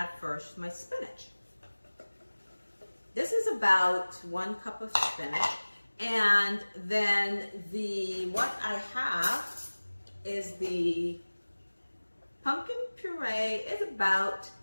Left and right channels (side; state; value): both; inverted; correlation -1.00